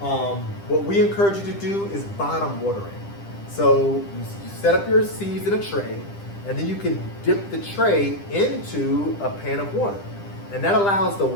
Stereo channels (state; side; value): late; right; 10 ms